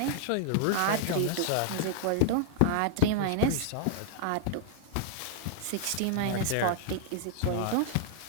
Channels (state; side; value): different; both; correlation -0.01